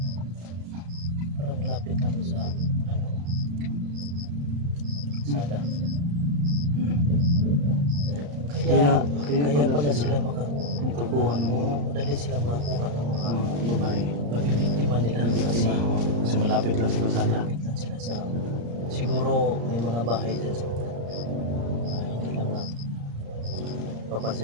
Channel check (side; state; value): left; late; 34 ms